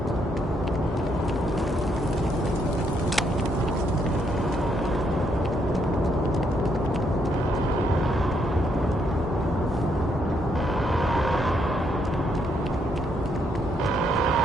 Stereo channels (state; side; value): normal; both; correlation 0.74